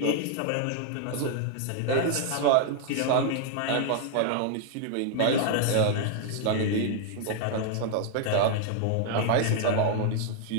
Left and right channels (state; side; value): different; both; correlation 0.00